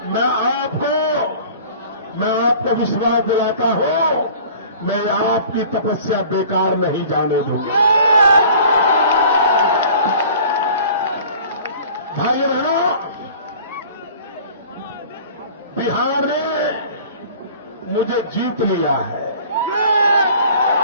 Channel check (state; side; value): inverted; both; correlation -0.46